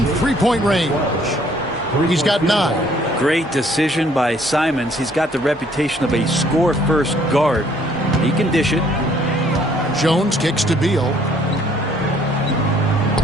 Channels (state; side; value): normal; both; correlation 0.62